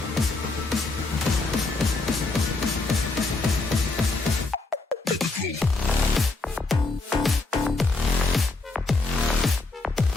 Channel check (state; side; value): quieter; right; 3.4 dB